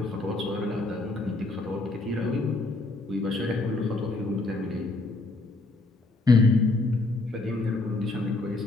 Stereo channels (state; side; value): quieter; right; 3.1 dB